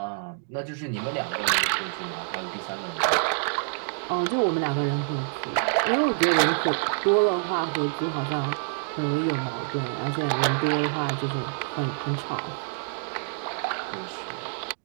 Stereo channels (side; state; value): left; silent; digital silence